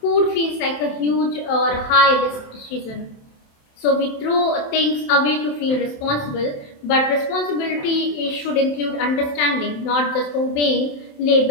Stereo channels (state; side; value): late; right; 27 ms